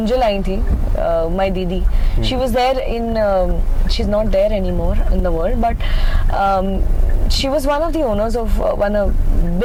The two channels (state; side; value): identical; both; correlation 1.00